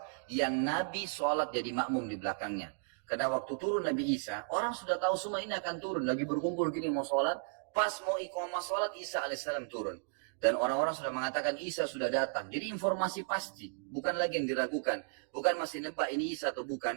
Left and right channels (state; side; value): silent; left; digital silence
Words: yang Nabi sholat jadi makmum di belakangnya. Karena waktu turun Nabi Isa, orang sudah tahu semua ini akan turun, lagi berkumpul gini mau sholat, pas mau iqamah sholat Isa alaihissalam turun. Dan orang-orang sudah mengatakan Isa sudah datang. Jadi informasi pasti, bukan lagi yang diragukan. Bukan masih nebak ini Isa atau